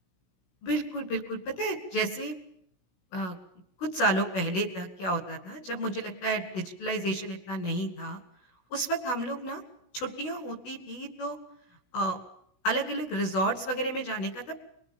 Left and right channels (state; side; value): late; right; 16 ms